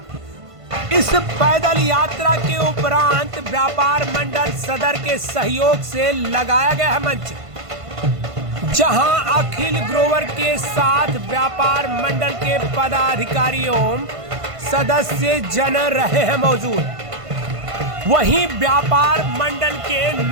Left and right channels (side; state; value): left; late; 1.5 ms